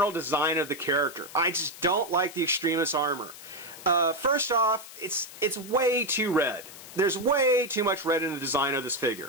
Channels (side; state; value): left; noise; hiss, 16 dB below the sound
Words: design of the character. I just don't like the Extremist Armor. First off, it's way too red. There's way too much red in the design of this